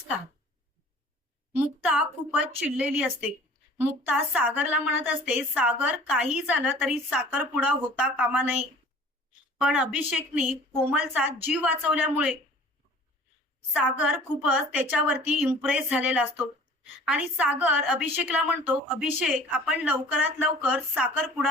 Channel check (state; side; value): normal; both; correlation 0.48